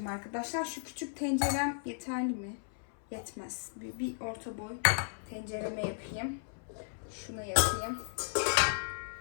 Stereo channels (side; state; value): right; silent; 54 dB below the other